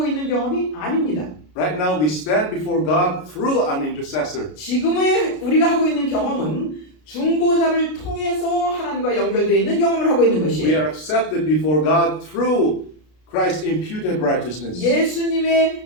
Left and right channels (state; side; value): late; right; 33 ms